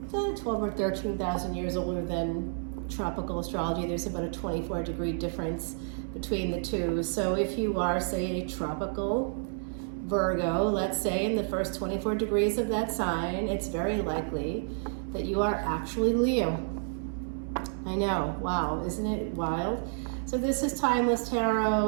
12 or 13,000 years older than tropical astrology. There's about a 24-degree difference between the two. So if you are, say, a tropical Virgo, let's say, in the first 24 degrees of that sign, it's very likely that you are actually Leo. I know, wow, isn't it wild? So this is Timeless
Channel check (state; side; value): silent; left; 58 dB below the other